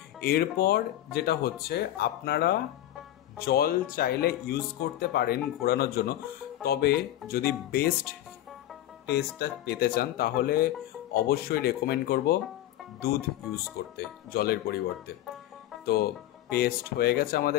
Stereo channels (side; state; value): right; quieter; 13.6 dB